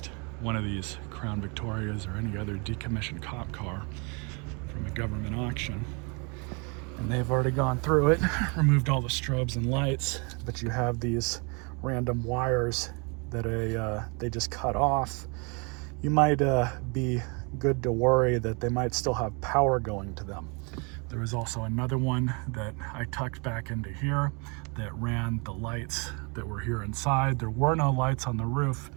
one of these Crown Victorias or any other decommissioned cop car from a government auction, and they've already gone through it, removed all the strobes and lights, but you have these random wires that they just cut off, you might be good to worry that they might still have power going to them. There was also another one that I tucked back into here that ran the lights that were here inside. There were no lights on the roof,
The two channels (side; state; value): left; quieter; 32.5 dB